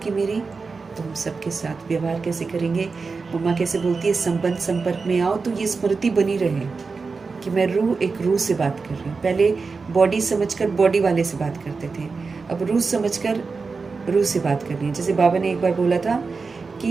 मेरी तो हम सबके साथ व्यवहार कैसे करेंगे। मम्मा कैसे बोलती है, संबंध संपर्क में आओ तो ये स्मृति बनी रहे कि मैं रूह, एक रूह से बात कर रही हूँ। पहले बॉडी समझकर बॉडी वाले से बात करते थे, अब रूह समझकर रूह से बात करनी है। जैसे बाबा ने एक बार बोला था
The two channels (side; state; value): left; quieter; 4.5 dB